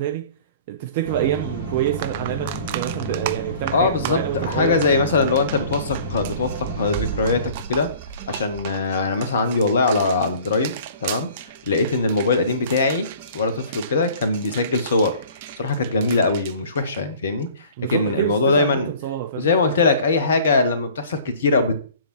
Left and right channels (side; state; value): both; inverted; correlation -0.48